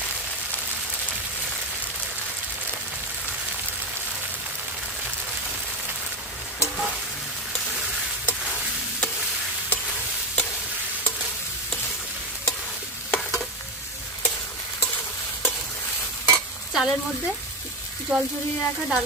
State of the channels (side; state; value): both; normal; correlation 0.14